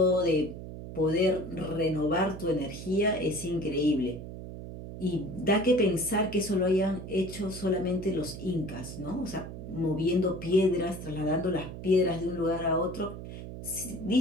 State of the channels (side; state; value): right; noise; hum, 10 dB below the sound